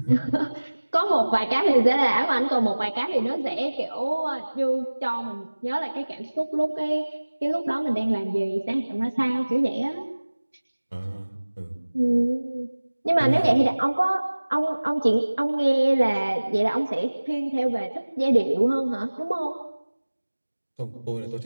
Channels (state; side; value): inverted; both; correlation -1.00